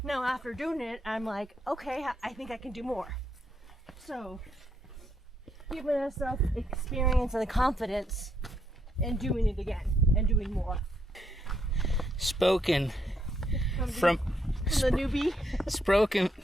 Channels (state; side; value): normal; both; correlation 0.76